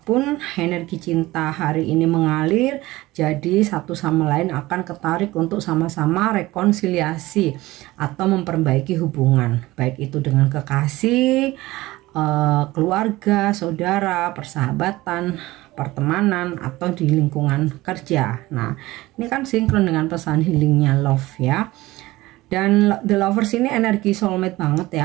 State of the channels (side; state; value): left; quieter; 18.7 dB